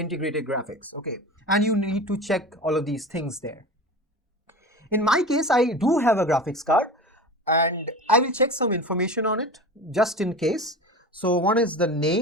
graphics, okay? And you need to check all of these things there. In my case, I do have a graphics card, and I will check some information on it just in case. So one is the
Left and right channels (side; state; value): both; normal; correlation 0.32